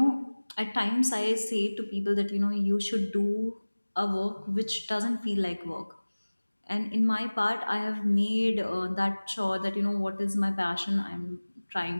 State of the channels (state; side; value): inverted; both; correlation -1.00